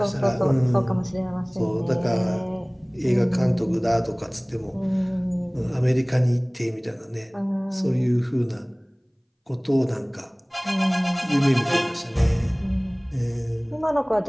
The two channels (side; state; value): both; identical; correlation 1.00